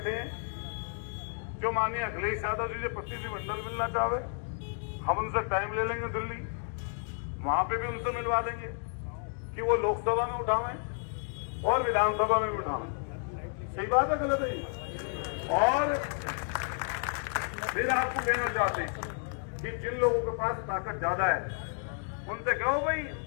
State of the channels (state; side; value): silent; right; 57 dB below the other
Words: हैं जो माननीय अखिलेश यादव जी से प्रतिनिधिमंडल मिलना चाहे, हम उनसे टाइम ले लेंगे दिल्ली, वहां पे भी उनसे मिलवा देंगे कि वो लोकसभा में उठावें और विधानसभा में भी उठावें। सही बात है गलत है? और फिर आपको कहना चाहते हैं कि जिन लोगों के पास ताकत ज्यादा है उनसे कहो भाई